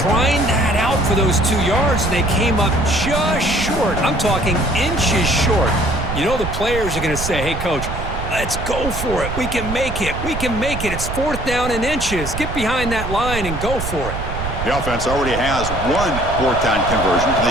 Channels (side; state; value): right; noise; rumble, 6 dB below the sound